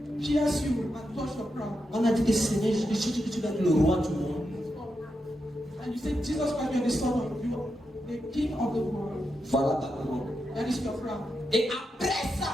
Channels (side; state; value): both; normal; correlation 0.86